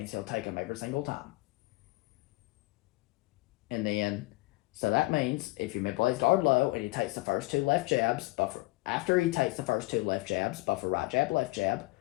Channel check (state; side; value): quieter; right; 22.7 dB